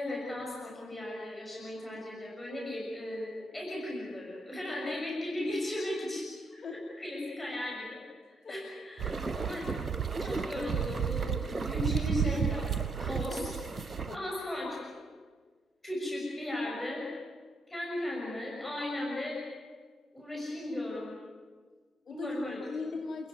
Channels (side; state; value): both; normal; correlation 0.76